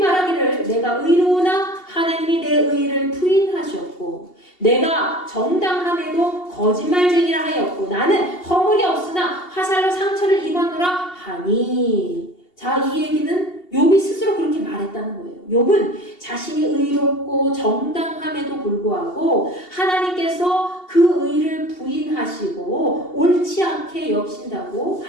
내가 의로우나 하나님이 내 의를 부인하셨고 내가 정당함에도 거짓말쟁이라 하였고 나는 허물이 없으나 화살로 상처를 입었노라 하니. 자, 이 얘기는 욥이 스스로 그렇게 말했다는 거예요. 욥은 자신이 의롭고 정당함에도 생각함에도 불구하고 하나님께서 그 의를 부인하시고 옳지 않게 여기신다고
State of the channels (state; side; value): late; right; 2.7 ms